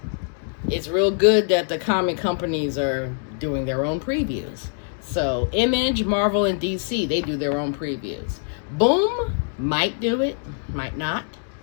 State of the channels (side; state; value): right; silent; 63 dB below the other